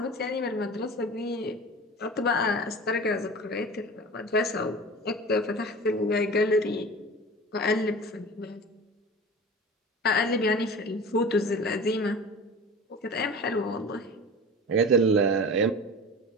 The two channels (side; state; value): both; normal; correlation 0.35